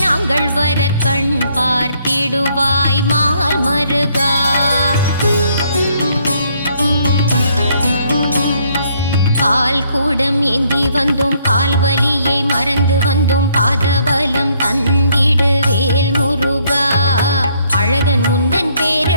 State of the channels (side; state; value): both; inverted; correlation -0.68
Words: நாங்கள் வர கண் பார்த்திடுவாய் மால் மருகா. பால் கூடம் ஏந்தி வந்தோம் கால்வலியை மறந்து வந்தோம் பாதபலம் தந்திடு வேல் முருகா. அழகன் முந்தன்